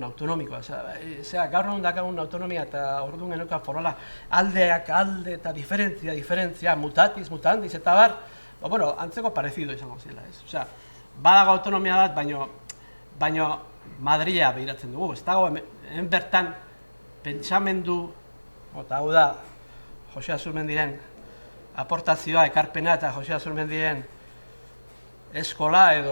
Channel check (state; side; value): inverted; both; correlation -1.00